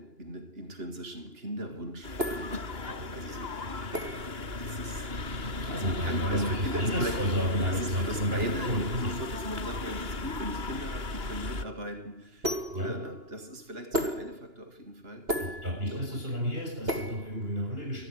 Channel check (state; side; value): late; left; 2.9 ms